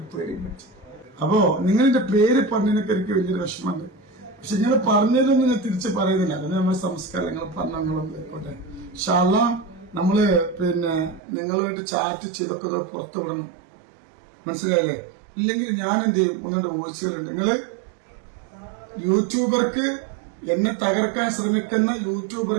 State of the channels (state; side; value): drops out; left; at 11.2 s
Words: പേടി വെച്ചു. അപ്പോ നിങ്ങളുടെ പേര് പറഞ്ഞതിനൊക്കെ എനിക്ക് വലിയൊരു വിഷമമുണ്ട്. പക്ഷെ നിങ്ങൾ പറഞ്ഞതൊന്നും ഞാൻ തിരിച്ച് പറയുന്നില്ല. അതിന് നമ്മുടെ സംസ്കാരം നിങ്ങൾ പറഞ്ഞോട്ടെ. ഇൻഷാ അല്ലാഹ് നമ്മള് പിന്നെ നിങ്ങളുമായിട്ട് ചാറ്റ് ചെയ്തൊക്കെ പുറത്തു വിടണം. മനസ്സിലായില്ലേ? ഇല്ലെങ്കിൽ ഞാൻ എന്ത് ചെയ്യും? 1-2 വോയിസുകളുണ്ട്. നിങ്ങള് യൂട്യൂബർക്ക് എന്നെ തകർക്കാൻ ശ്രമിക്കുന്ന